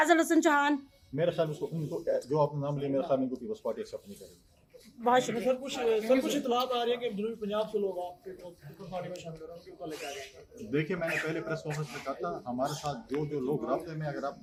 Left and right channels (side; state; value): both; identical; correlation 1.00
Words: हसन चौहान, मेरे ख्याल में उनको जो आपने नाम लिया, मेरे ख्याल में उनको पीपल्स पार्टी एक्सेप्ट नहीं करेगी। बहुत शुक्रिया। सर कुछ इतलात आ रही है कि जनूबी पंजाब से लोग आपके पार्टी में शामिल हो रहे हैं, उनके ऊपर लेके आ रहे हैं। देखिए, मैंने पहले प्रेस कॉन्फ्रेंस में कहा था, हमारे साथ जो लोग राब्ते में, अगर आप